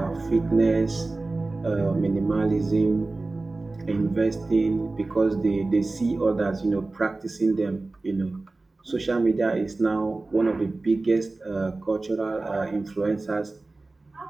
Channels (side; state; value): left; quieter; 3.3 dB